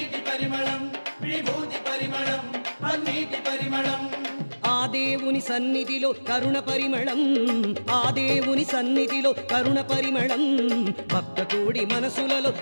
పరిమళం విభూతి పరిమళం పన్నీటి పరిమళం ఆ దేవుని సన్నిధిలో కరుణ పరిమళం ఆ దేవుని సన్నిధిలో కరుణ పరిమళం భక్త కోడి మనసులలో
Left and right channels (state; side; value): inverted; both; correlation -1.00